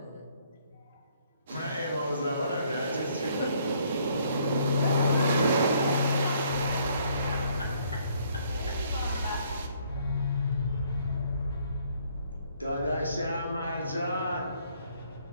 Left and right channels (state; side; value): inverted; both; correlation -0.65